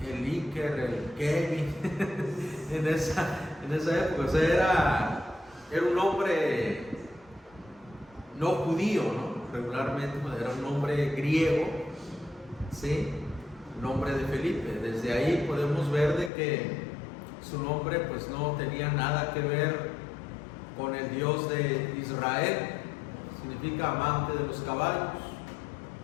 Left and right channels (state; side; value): drops out; right; at 16.3 s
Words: el Iker, el Kevin en esa época. O sea, era un nombre no judío, ¿no? Regularmente era un nombre griego, ¿sí? Nombre de Felipe. Desde ahí podemos ver de que su nombre pues no tenía nada que ver con el Dios de Israel, significa amante de los caballos.